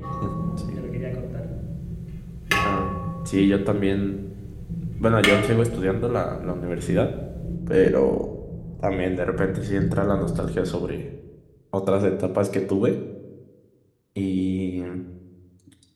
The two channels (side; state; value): both; identical; correlation 1.00